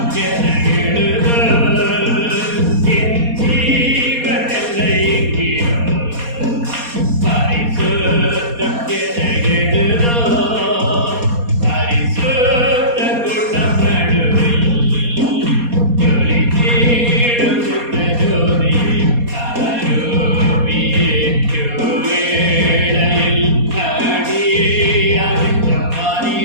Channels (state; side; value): late; left; 4.2 ms